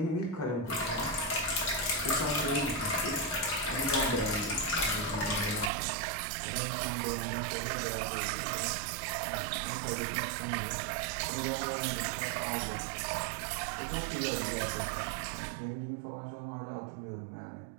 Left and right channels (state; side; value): drops out; left; at 5.7 s